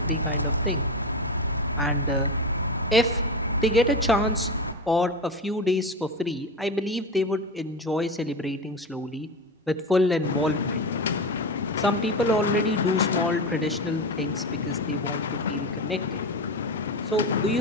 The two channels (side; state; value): both; normal; correlation 0.21